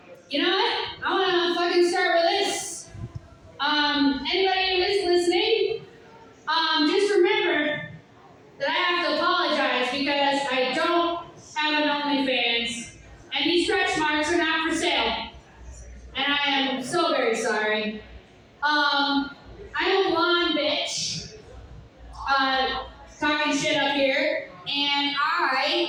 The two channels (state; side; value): identical; both; correlation 1.00